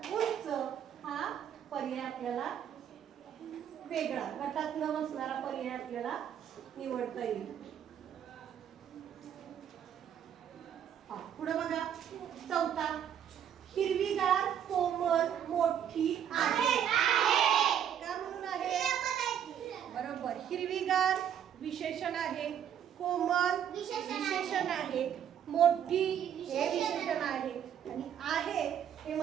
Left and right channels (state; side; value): quieter; left; 9.3 dB